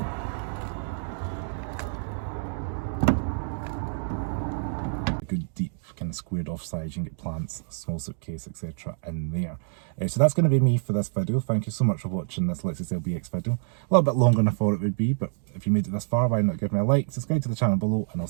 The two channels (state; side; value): silent; left; digital silence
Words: A good deep kind of squared off sides. You can get plants, small suitcase, etc. in there. So that's going to be me for this video. Thank you so much for watching this Lexus LBX video. A little bit longer than I thought it would be, but if you made it this far, why not give me a like, subscribe to the channel below, and I'll